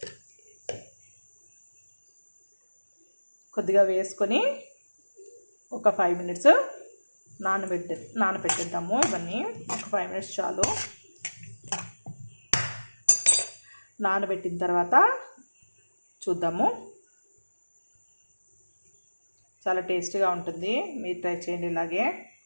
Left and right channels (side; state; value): both; inverted; correlation -1.00